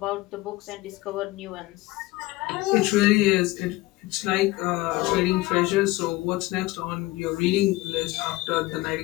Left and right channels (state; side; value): quieter; right; 19.6 dB